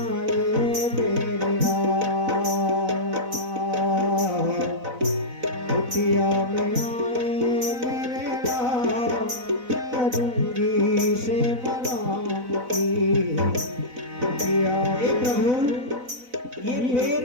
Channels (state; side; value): late; left; 4.0 ms